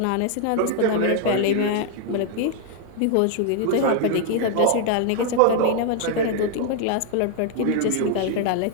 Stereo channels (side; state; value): both; different; correlation 0.00